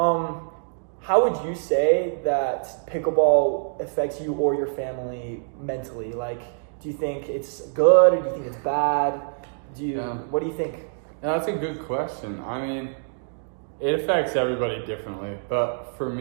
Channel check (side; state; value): left; silent; digital silence